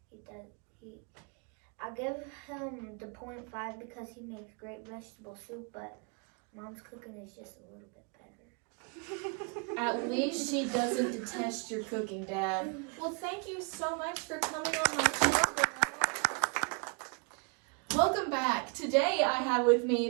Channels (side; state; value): left; quieter; 36.5 dB